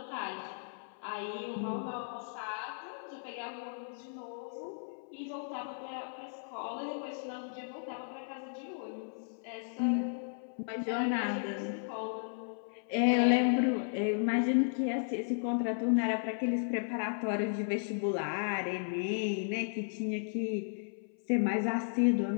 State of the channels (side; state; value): right; silent; 55 dB below the other